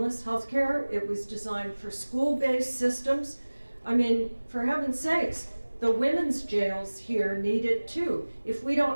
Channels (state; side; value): inverted; both; correlation -1.00